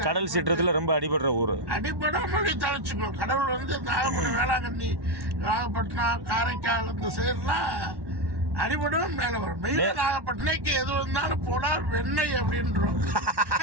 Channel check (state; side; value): late; left; 1.1 ms